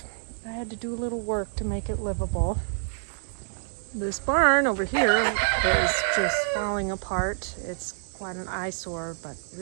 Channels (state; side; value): silent; left; digital silence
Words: I had to do a little work to make it livable. This barn over here is just falling apart. It's quite an eyesore, but